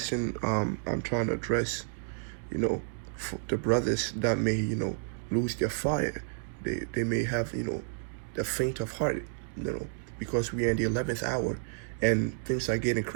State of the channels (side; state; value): left; silent; digital silence